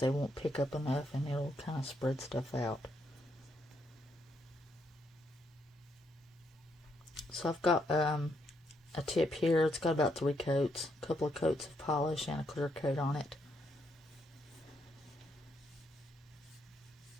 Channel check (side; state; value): both; normal; correlation 0.76